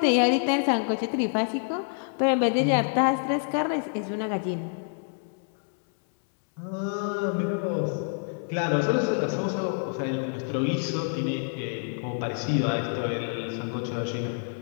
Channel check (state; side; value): silent; right; 60 dB below the other